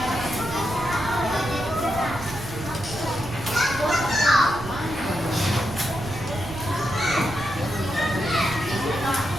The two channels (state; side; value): noise; right; rumble, 11 dB below the sound